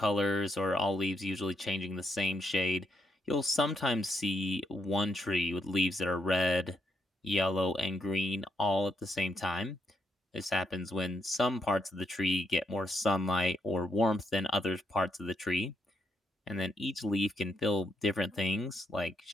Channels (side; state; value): both; normal; correlation 0.77